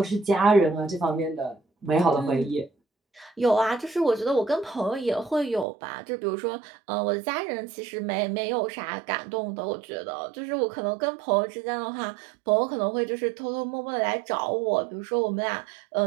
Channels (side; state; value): left; drops out; at 5.7 s